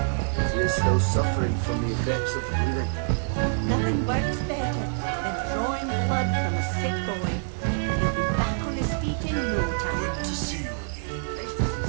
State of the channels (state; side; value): silent; left; digital silence